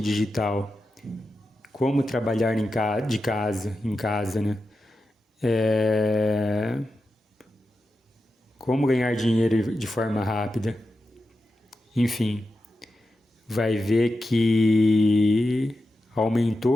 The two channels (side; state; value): both; normal; correlation 0.90